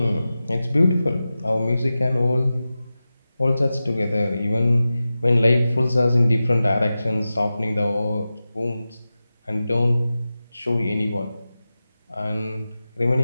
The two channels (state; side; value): inverted; both; correlation -0.94